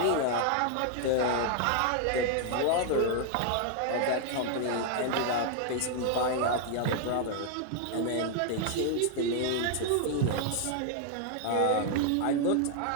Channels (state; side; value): different; both; correlation 0.00